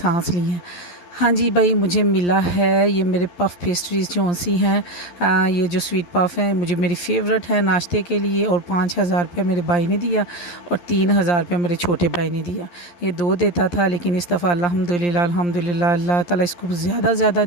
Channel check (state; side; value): late; right; 11 ms